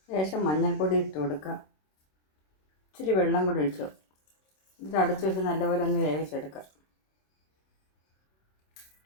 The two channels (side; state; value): right; late; 26 ms